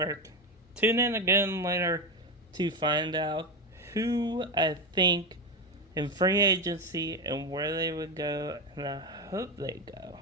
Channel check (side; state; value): both; normal; correlation 0.13